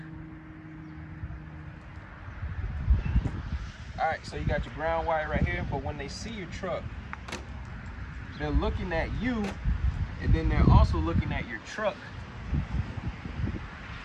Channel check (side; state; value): both; identical; correlation 1.00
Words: all right, so you got your ground wire right here, but when they see your truck, they're looking at you, and then they're also looking at your truck,